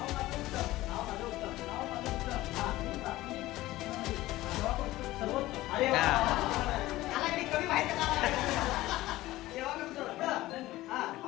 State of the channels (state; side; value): quieter; right; 17.0 dB